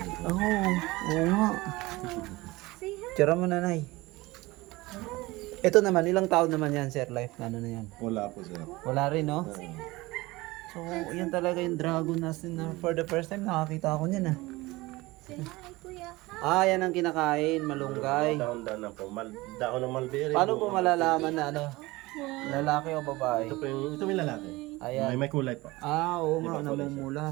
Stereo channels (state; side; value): quieter; left; 21.0 dB